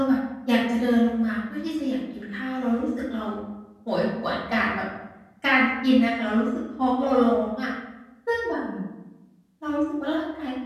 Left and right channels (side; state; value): both; identical; correlation 1.00